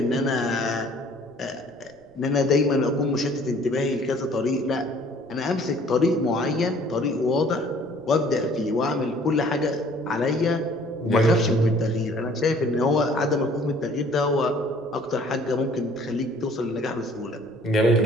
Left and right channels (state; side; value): noise; right; rumble, 30 dB below the sound